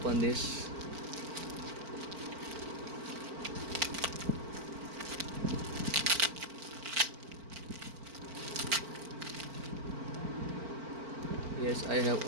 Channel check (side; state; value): left; late; 4.5 ms